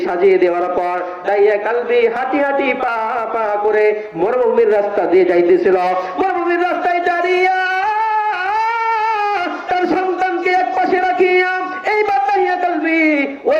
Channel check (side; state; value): both; identical; correlation 1.00